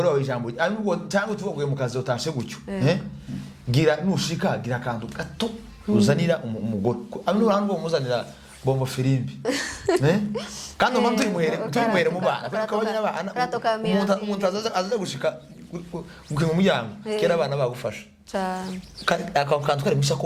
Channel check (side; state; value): both; identical; correlation 1.00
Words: wawe ijambo cyangwa tuvuye mu kazi utashe gutyo gira nushika gira akantu gato uzanira umugore abantu bamuzanira bombo firimbi kandi umuntu turimuhere mu bana kabanya abana umuntu azaza gushika gukinga umuryango kera abana bagufasha akantu kari